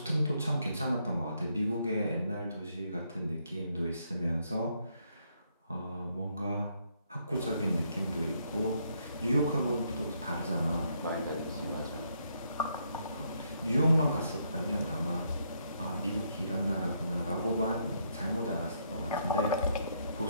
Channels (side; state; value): both; inverted; correlation -0.73